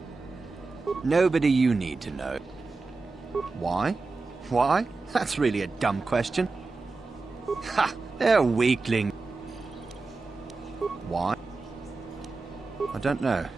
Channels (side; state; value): left; quieter; 3.9 dB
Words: Nobody you need to know. Why? Why? That's really a dumb question. Ha! They're a weakling. Why? I don't know.